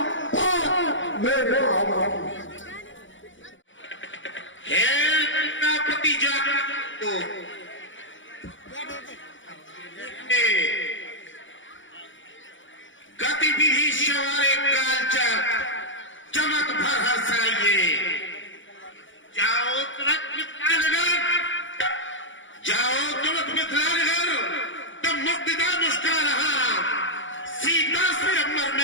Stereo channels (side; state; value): right; late; 0.56 ms